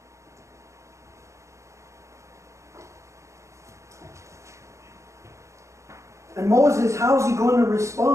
And Moses, how's he going to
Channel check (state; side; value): late; left; 0.14 ms